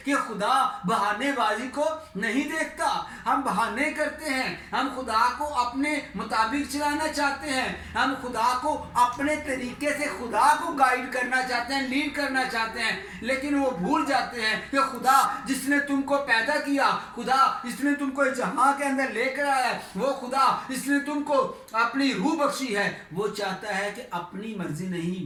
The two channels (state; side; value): identical; both; correlation 1.00